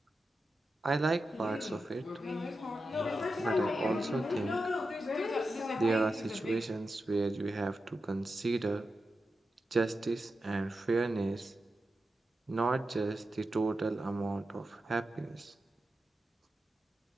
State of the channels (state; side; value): normal; both; correlation 0.90